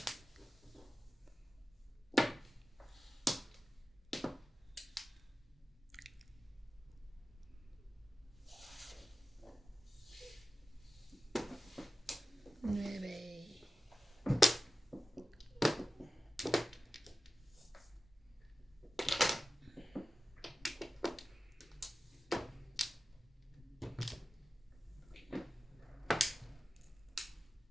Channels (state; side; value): normal; both; correlation 0.94